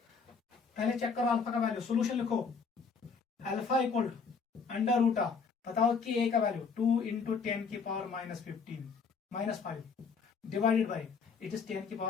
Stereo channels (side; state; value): right; quieter; 5.4 dB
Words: चेक करो अल्फा का वैल्यू, सोल्यूशन लिखो, अल्फा इक्वल √, बताओ Ka का value 2 × 10⁻⁻15 divided by it is